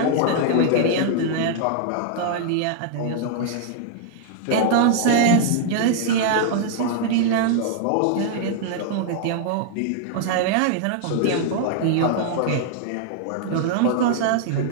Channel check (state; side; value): different; both; correlation 0.00